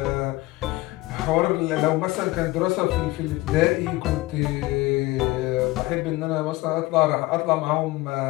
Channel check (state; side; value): quieter; right; 19.8 dB